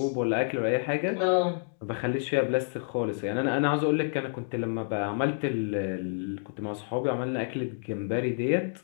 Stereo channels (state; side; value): silent; right; digital silence